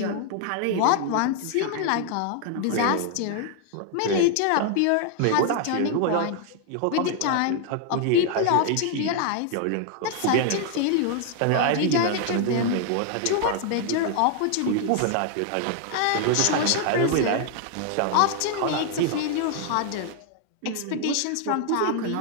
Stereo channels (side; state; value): both; different; correlation 0.00